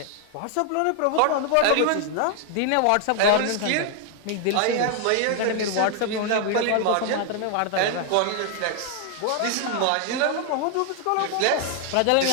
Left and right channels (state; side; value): different; both; correlation 0.00